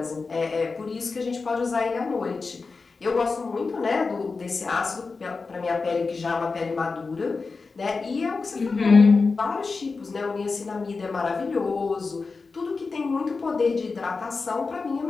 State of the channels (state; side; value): quieter; right; 4.3 dB